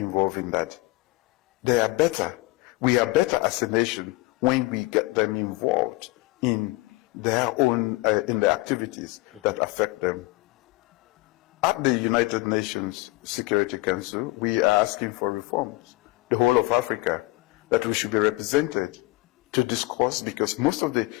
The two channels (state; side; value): quieter; right; 21.4 dB